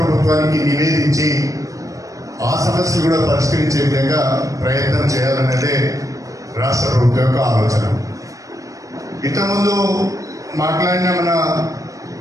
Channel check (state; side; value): late; left; 0.16 ms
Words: నివేదించి ఆ సమస్యలు కూడా పరిష్కరించే విధంగా ప్రయత్నం చేయాలన్నదే రాష్ట్ర ప్రభుత్వం యొక్క ఆలోచన. ఇంతకుముందు మాట్లాడిన మన